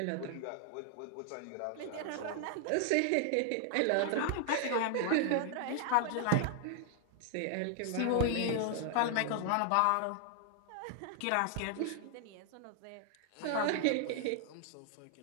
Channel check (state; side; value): different; both; correlation 0.00